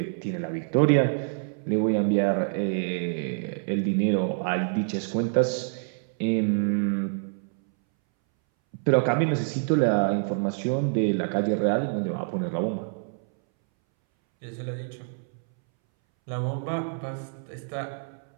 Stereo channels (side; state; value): left; silent; 60 dB below the other